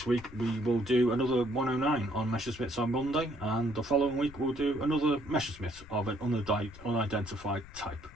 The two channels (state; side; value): noise; left; rumble, 18 dB below the sound